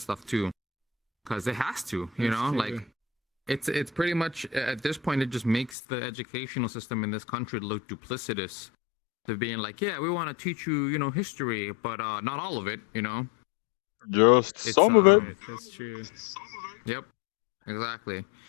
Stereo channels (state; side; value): drops out; right; at 5.7 s